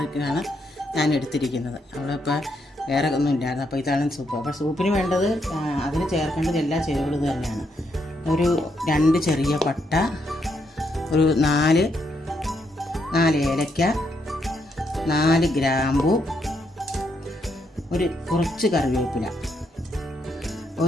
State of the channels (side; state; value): both; normal; correlation 0.77